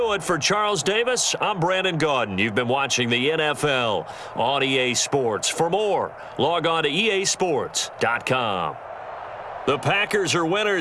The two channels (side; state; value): both; identical; correlation 1.00